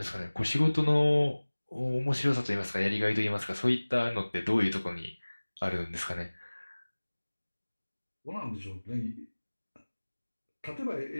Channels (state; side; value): inverted; both; correlation -1.00